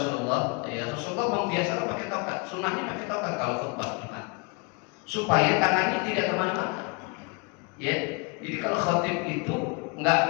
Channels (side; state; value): right; quieter; 29.9 dB